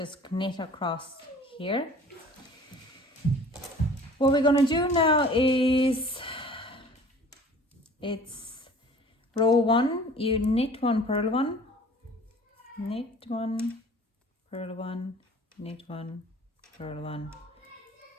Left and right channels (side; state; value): both; normal; correlation 0.48